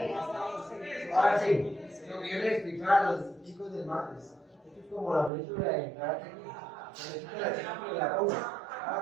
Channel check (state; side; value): drops out; left; at 5.3 s